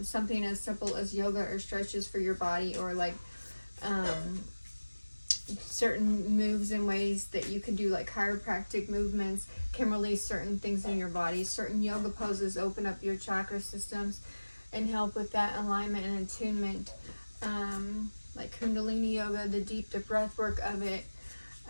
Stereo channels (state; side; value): inverted; both; correlation -1.00